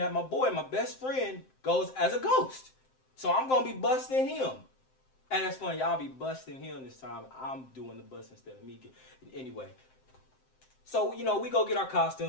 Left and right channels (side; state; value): right; late; 7.7 ms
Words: my boy, my best friend, goes as a ghost. So I'm going to be busting him. And that's funny, y'all be busting him this time. I'm doing the bust instead of me. Anyway. So, you know, we go get our